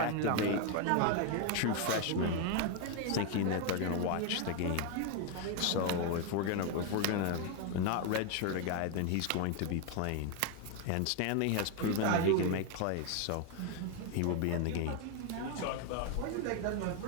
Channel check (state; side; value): different; both; correlation 0.01